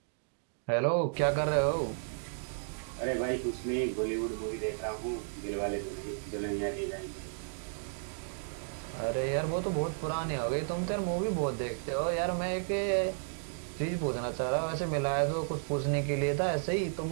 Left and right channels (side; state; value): left; silent; digital silence